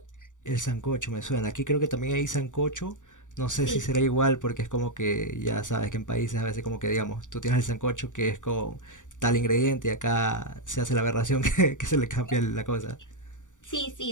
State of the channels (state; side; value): late; right; 0.86 ms